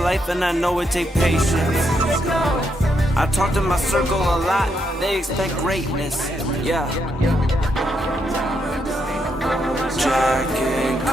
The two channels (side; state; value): both; normal; correlation 0.79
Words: and I know it take patience. I talk to my circle a lot, they expect greatness, yeah. Jack and